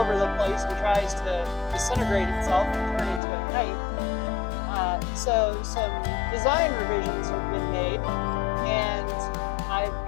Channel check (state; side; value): drops out; right; at 3.2 s